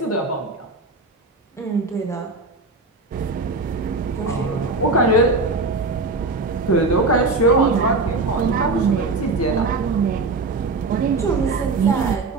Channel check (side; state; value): left; quieter; 3.5 dB